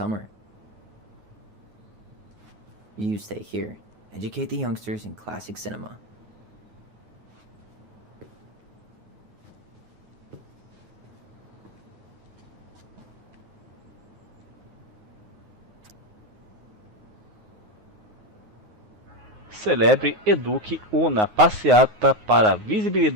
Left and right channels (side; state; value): left; late; 9.5 ms